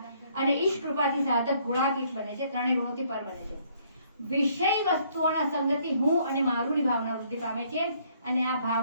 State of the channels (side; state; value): both; inverted; correlation -0.65